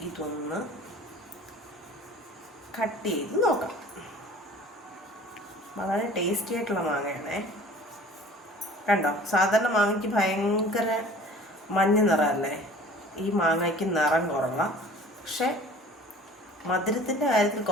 ഇതൊന്ന് കട്ട് ചെയ്ത് നോക്കാം. വളരെ ടേസ്റ്റി ആയിട്ടുള്ള മാങ്ങയാണേ. കണ്ടോ, സാധാരണ മാങ്ങയ്ക്ക് ഭയങ്കര മഞ്ഞ നിറമല്ലേ, ഈ മാങ്ങയ്ക്ക് നിറം കുറവാണ്. പക്ഷെ മധുരത്തിൻ്റെ കാര്യത്തിൽ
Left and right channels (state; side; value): normal; both; correlation 0.46